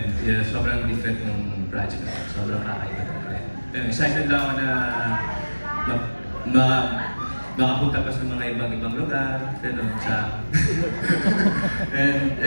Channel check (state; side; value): inverted; both; correlation -1.00